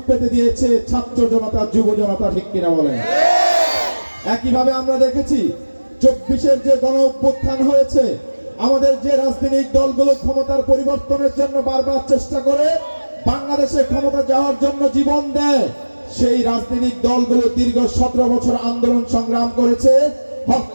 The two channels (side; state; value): both; inverted; correlation -1.00